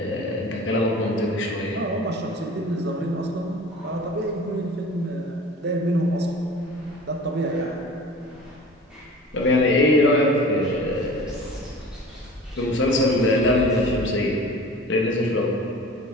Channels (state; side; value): normal; both; correlation 0.41